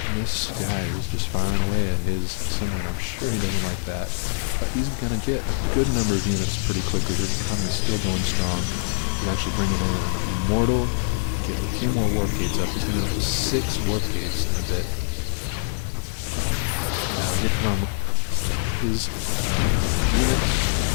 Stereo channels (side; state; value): right; silent; digital silence